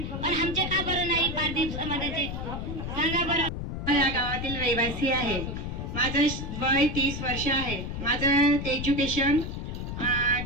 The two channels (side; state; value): left; noise; rumble, 5 dB below the sound